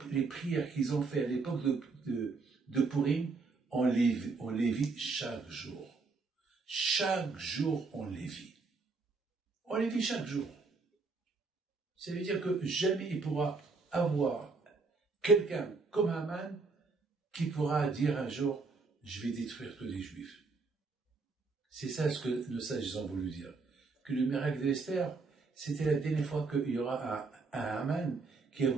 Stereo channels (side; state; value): left; quieter; 4.2 dB